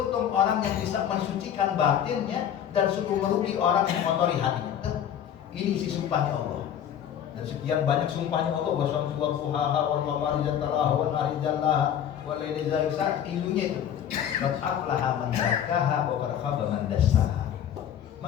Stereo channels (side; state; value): right; quieter; 9.5 dB